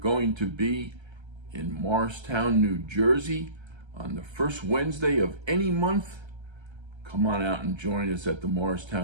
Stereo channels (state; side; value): late; left; 1.3 ms